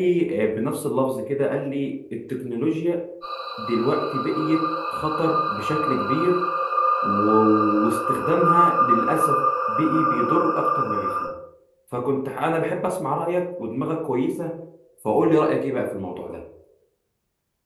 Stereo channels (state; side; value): identical; both; correlation 1.00